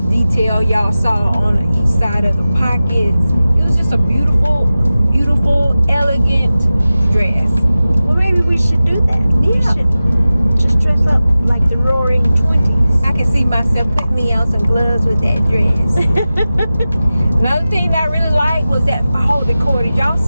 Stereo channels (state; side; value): inverted; both; correlation -0.95